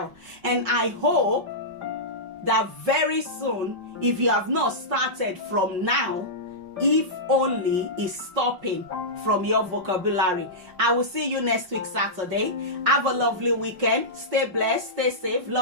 And I hope that very soon, if you have not started from now, if only is stopping from your vocabulary. I will see you next week Saturday. Have a lovely weekend. Stay blessed, stay safe.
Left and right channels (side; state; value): left; late; 5.5 ms